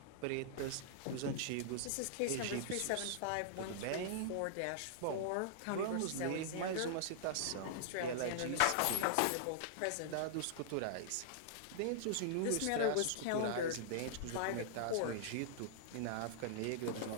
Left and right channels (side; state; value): both; different; correlation -0.01